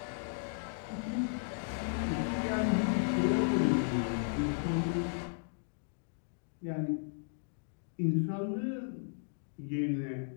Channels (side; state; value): right; silent; digital silence